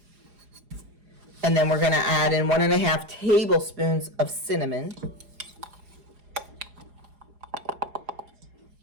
And then we're going to add in 1.5 tablespoons of cinnamon.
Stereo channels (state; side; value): late; left; 4.9 ms